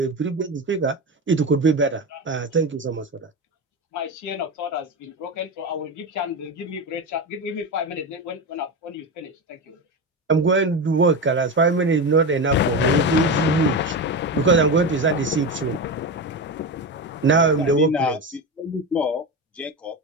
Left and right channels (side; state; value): both; normal; correlation 0.19